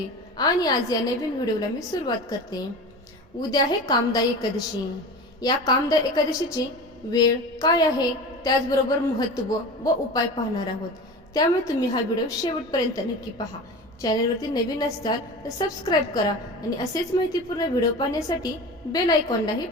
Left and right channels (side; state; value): both; normal; correlation 0.32